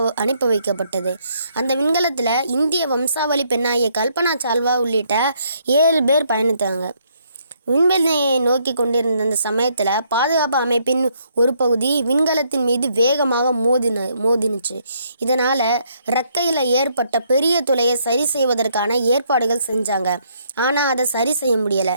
வைக்கப்பட்டது. அந்த விண்கலத்தில் இந்திய வம்சாவளி பெண்ணாகிய கல்பனா சாவ்லா உள்ளிட்ட 7 பேர் பயணித்தாங்க. விண்வெளியை நோக்கி கொண்டிருந்த அந்த சமயத்தில் பாதுகாப்பு அமைப்பின் ஒரு பகுதி விண்கலத்தின் மீது வேகமாக மோதினுச்சு. இதனால் இறக்கையில் ஏற்பட்ட பெரிய துளையை சரி செய்வதற்கான ஏற்பாடுகள் செஞ்சாங்க. ஆனால் அதை சரி செய்ய முடியலை.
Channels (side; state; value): both; inverted; correlation -0.70